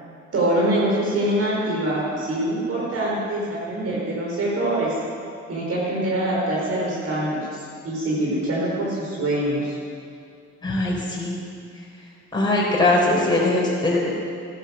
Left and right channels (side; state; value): both; normal; correlation 0.31